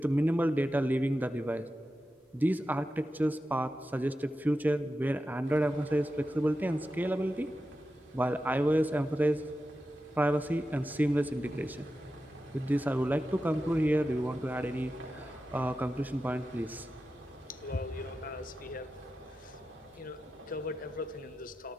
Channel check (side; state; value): both; normal; correlation 0.91